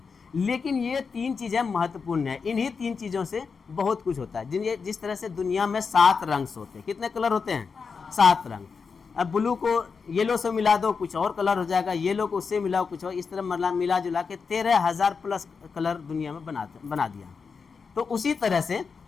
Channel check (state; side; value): quieter; right; 5.4 dB